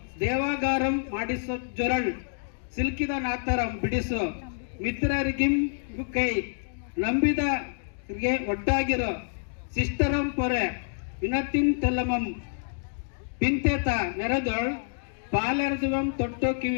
ದೇವಾಗಾರಂ ಮಾಡಿಸು ಜೊರಳ್, ಸಿಲ್ಕಿದ ನಾತರಂ ಬಿಡಿಸು, ಮಿತ್ರರಿಗಿಂ ಕೈ, ನಂಬಿದರಿಗೆ ಒಟ್ಟಾಗಿರೋ, ಸಿಸ್ಟರಂ ಪೊರೆ, ವಿನತಿನ್ ತೆಲ್ಲಮಂ, ಪಿಂತೆತ ನೆರೆದೊಳ್, ಪಾಲೆರದುವಂ ತೊಟ್ಟು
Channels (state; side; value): silent; right; digital silence